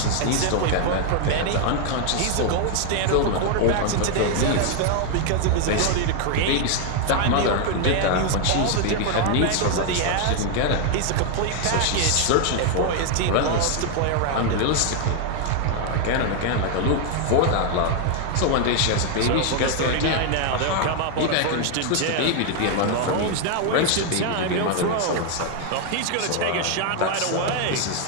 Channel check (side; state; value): both; different; correlation 0.00